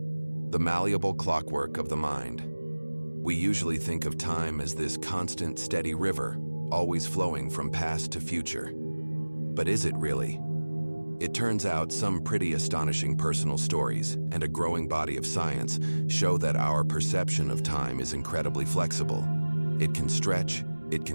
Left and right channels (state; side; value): inverted; both; correlation -1.00